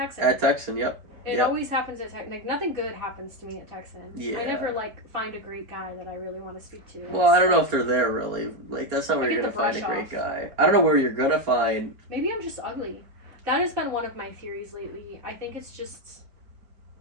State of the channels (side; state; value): left; late; 4.3 ms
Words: At Texan, yep. It always happens at Texan. Like, nothing good happens to me at Texan. Yeah. I never find a great guy that I really want to speak to. Well, I don't know if they're there really. Like, that's not where you're gonna find a great guy. I don't know where you're gonna find. Maybe I'm just ugly. That has been one of my theories lately. I think it's just,